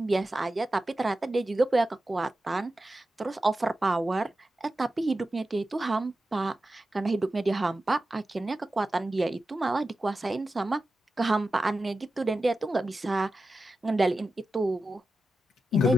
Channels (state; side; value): normal; both; correlation 0.92